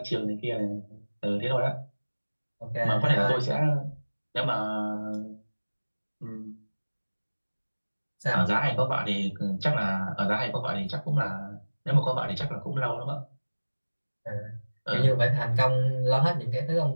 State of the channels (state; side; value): inverted; both; correlation -1.00